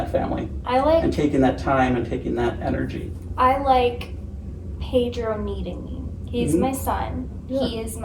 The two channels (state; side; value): identical; both; correlation 1.00